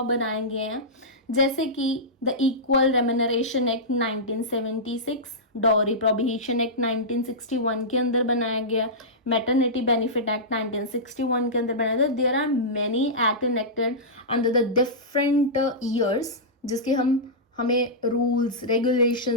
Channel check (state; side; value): normal; both; correlation -0.14